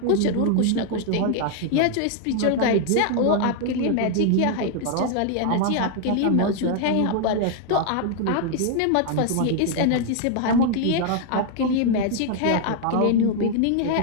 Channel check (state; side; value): different; both; correlation 0.00